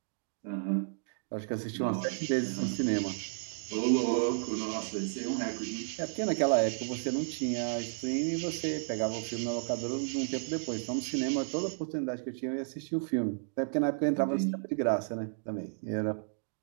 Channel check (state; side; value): silent; left; digital silence